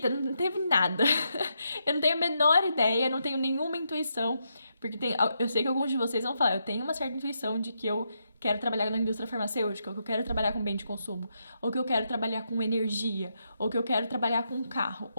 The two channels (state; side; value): inverted; both; correlation -0.81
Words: não teve nada. Eu não tenho a menor ideia, não tenho nenhuma intuição, porque eu sei que alguns de vocês vão falar, eu tenho uma certa intuição de que eu quero trabalhar na indústria farmacêutica, ou que eu quero trabalhar com bem de consumo, ou que eu quero trabalhar com energia, ou que eu quero trabalhar com carro,